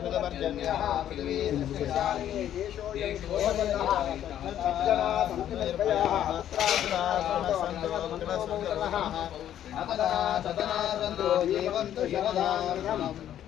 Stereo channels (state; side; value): quieter; right; 11.0 dB